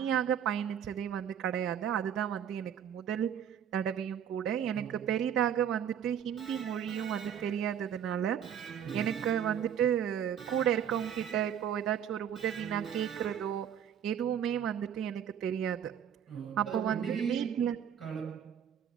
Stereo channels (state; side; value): quieter; left; 9.0 dB